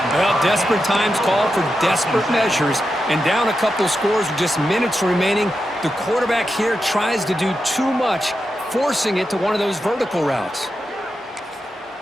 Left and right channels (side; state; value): both; normal; correlation 0.88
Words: Well, desperate times call for desperate measures, and down a couple scores with just minutes remaining, the quarterback here tries to do too much, forcing it to one of those vertical routes.